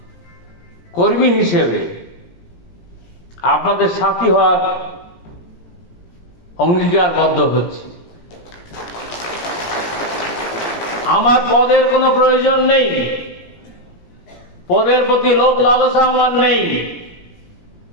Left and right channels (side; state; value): right; late; 17 ms